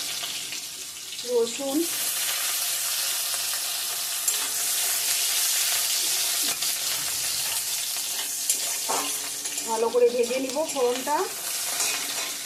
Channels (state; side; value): identical; both; correlation 1.00